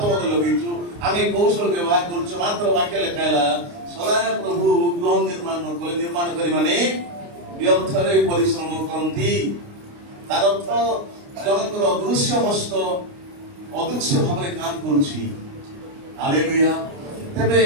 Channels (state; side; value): late; left; 29 ms